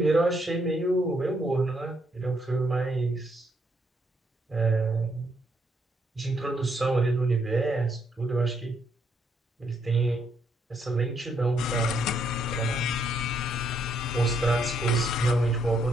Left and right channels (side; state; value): both; normal; correlation 0.74